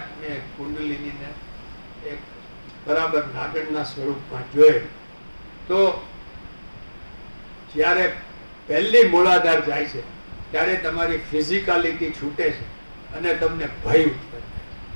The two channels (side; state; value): both; inverted; correlation -1.00